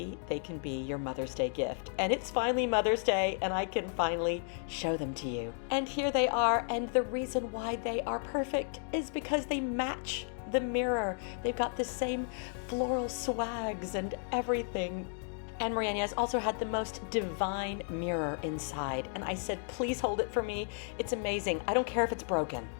they can be your Mother's Day gift. And it's finally Mother's Day, and I can finally show them to you. And here they are, and the reason why they are perfect is because they match the mirror. They've got the same floral swags and everything. And Marie-Agnès also had the most divine mirror inside. And I said, please hold it for me. It's amazing. I don't care if it's broken.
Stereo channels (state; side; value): silent; right; 55 dB below the other